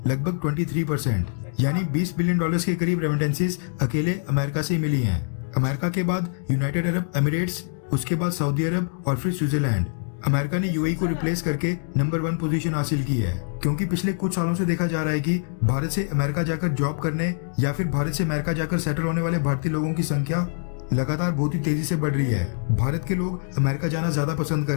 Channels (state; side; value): silent; right; digital silence